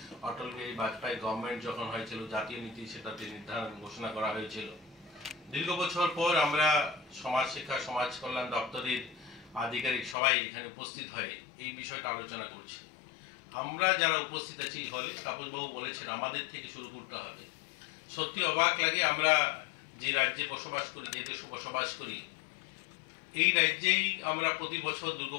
অটল বিহারী বাজপেয়ী গভর্নমেন্ট যখন হয়েছিল, জাতীয় নীতি সেটাতে নির্ধারণ ঘোষণা করা হয়েছিল। দীর্ঘ বছর পর আমরা সমাজ শিক্ষা সমাজ কল্যাণ দপ্তরের আধিকারিক সবাই এখানে উপস্থিত হয়ে এই বিষয়টা আলোচনা করছি। আমরা যারা উপস্থিত আছি হলে, তাপসবাবু বলেছেন আমাদের থেকে শুরু করতে হবে। সত্যি অবাক লাগে, আমরা যে রাজ্যে বসবাস করি, যে দেশে বসবাস করি, এই রাজ্যেই আমরা প্রতি বছর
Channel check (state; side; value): drops out; right; at 10.2 s